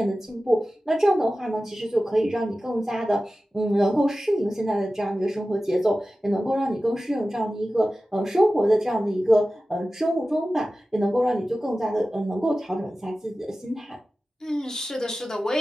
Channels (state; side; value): normal; both; correlation 0.95